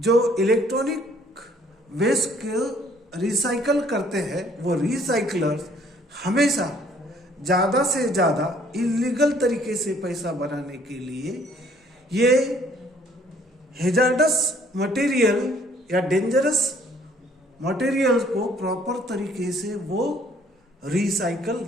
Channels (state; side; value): normal; both; correlation 0.60